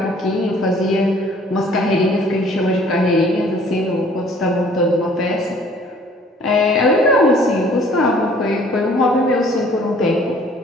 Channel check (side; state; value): both; normal; correlation 0.55